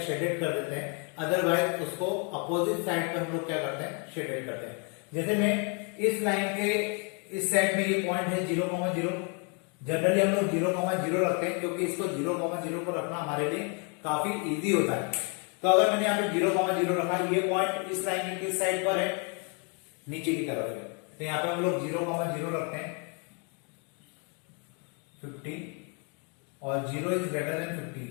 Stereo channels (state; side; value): quieter; right; 37.0 dB